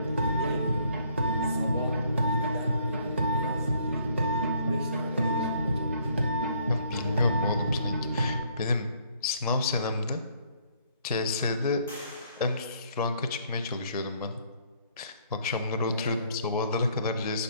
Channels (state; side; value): inverted; both; correlation -0.64